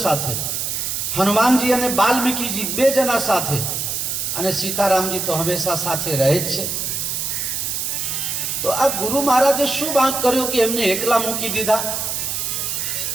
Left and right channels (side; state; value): right; noise; hiss, 2 dB below the sound